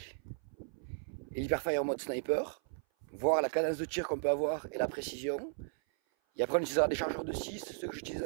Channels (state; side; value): silent; left; 54 dB below the other